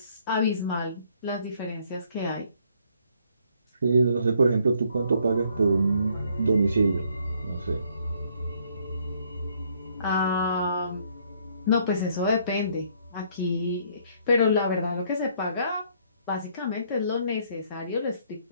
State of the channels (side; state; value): both; inverted; correlation -0.66